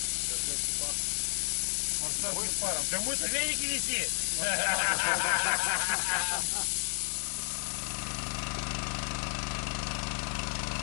Да мы-то веники неси.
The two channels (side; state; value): right; silent; 56 dB below the other